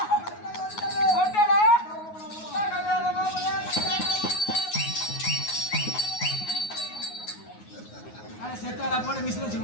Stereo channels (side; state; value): right; late; 9.5 ms